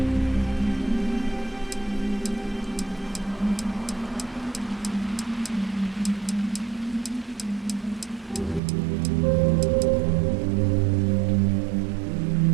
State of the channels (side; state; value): left; drops out; at 8.6 s